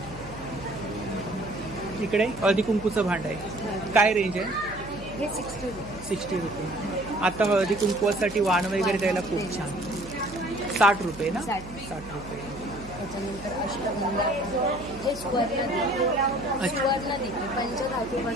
इकडे हळदी कुंकूचं भांड आहे। काय रेंज आहे? हे 60 रुपये। 60 रुपये। आता हळदी कुंकवासाठी वाण वगैरे द्यायला खूप छान। 60 रुपये ना? 60 रुपये। त्याच्यानंतर अष्टगंधा, हे सुवर्ण दिवे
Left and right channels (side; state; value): right; noise; hum, 15 dB below the sound